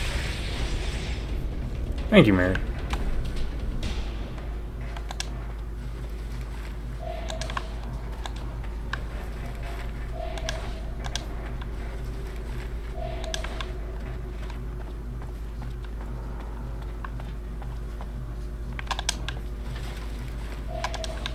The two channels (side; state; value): both; identical; correlation 1.00